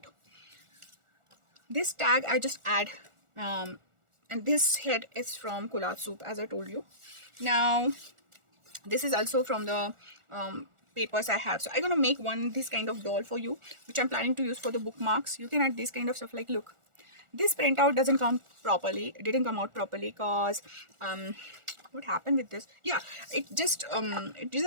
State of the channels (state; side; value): late; left; 1.4 ms